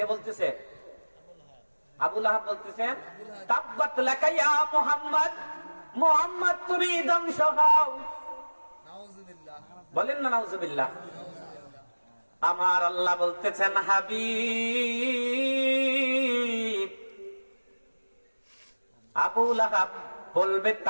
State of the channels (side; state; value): both; inverted; correlation -1.00